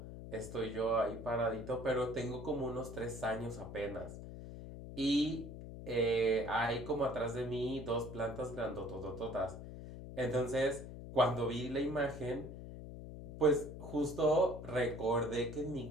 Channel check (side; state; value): left; noise; hum, 11 dB below the sound